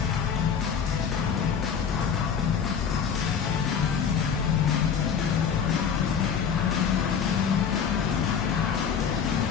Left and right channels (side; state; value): right; quieter; 7.1 dB